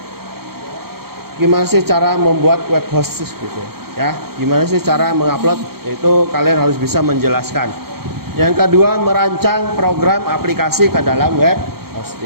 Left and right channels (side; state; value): left; late; 0.94 ms